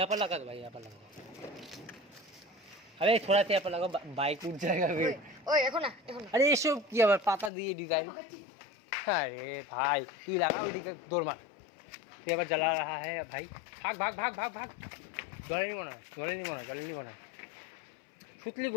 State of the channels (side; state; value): right; drops out; at 7.5 s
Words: पर लगा दो भाई, यहाँ पर लगाओ। अरे थोड़ा सा यहाँ पर लगाओ, बाइक उठ जाएगा फिर। ওই এখন না अरे এসব কি আবার পাতা দিয়ে ডিজাইন। अरे भाई তুই লাগা, ওইদিকে দৌড় মার। তুই আবার জ্বালা रहा है भाई, ভাগ। জলে নিব না সুতলি